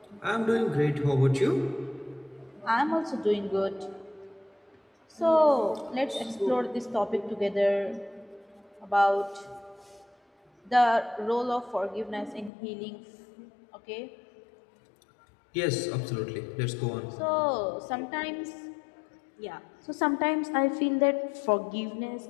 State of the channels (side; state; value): right; drops out; at 12.5 s